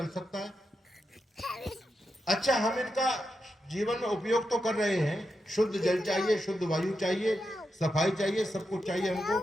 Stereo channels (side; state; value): both; normal; correlation 0.87